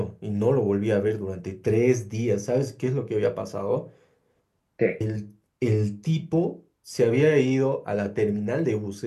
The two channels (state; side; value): identical; both; correlation 1.00